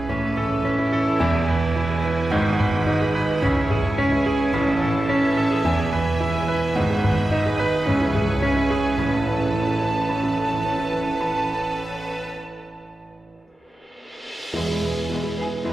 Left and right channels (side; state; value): both; normal; correlation 0.93